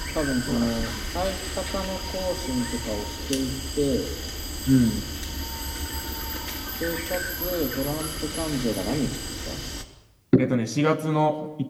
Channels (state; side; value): identical; both; correlation 1.00